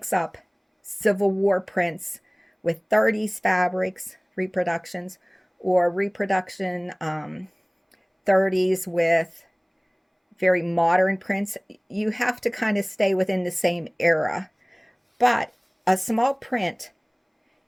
up Civil War prints with 30s fabrics, reproductions, or reproduction 30s with very modern prints. You have to kind of stay within the same era. But a small print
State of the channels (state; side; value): identical; both; correlation 1.00